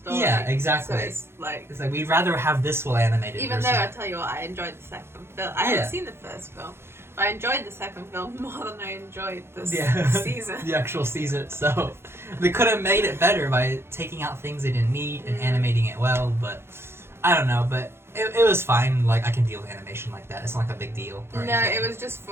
yeah, exactly. So it's like we'd rather have this well animated. even versus though I tell you what, I enjoyed the second film. I haven't seen the first film. I enjoyed the second film more than I enjoyed this season. The actual season itself. They could have made it better by taking out things they didn't need and animating it well, but I don't know, but it was fine. Like, I can deal with animation like that. It's not like a big deal. No, it was just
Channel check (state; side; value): late; left; 0.12 ms